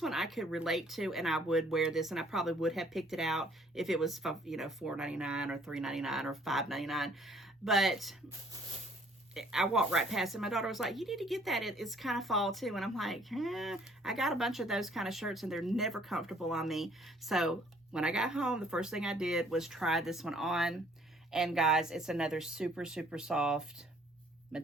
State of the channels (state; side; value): normal; both; correlation 0.59